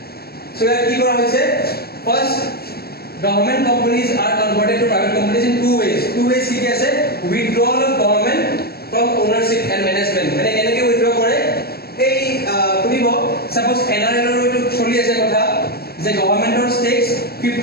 so here ki kora hoise first government companies are converted to private companies in two ways ki ase withdrawal of government from ownership and management mane keneke withdraw kore ei kunibo suppose NRL ro to choli ase kotha যে গভৰ্নমেন্টৰ stakes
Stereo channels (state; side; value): late; right; 0.46 ms